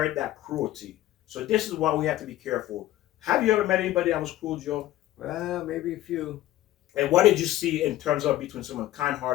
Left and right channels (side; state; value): right; quieter; 14.7 dB